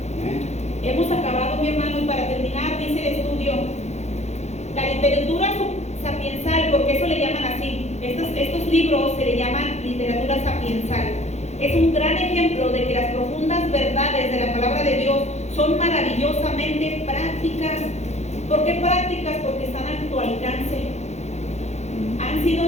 Hemos acabado, mi hermano, y para terminar dice el estudio, la literatura sapiensal, porque eso le llaman así, estos libros se le llaman literatura sapiensal. Es un gran ejemplo de que las profundas verdades de la palabra de Dios son maravillosamente prácticas. ¿Por qué prácticas? Porque están a tu alcance. Han sido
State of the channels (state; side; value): late; right; 0.32 ms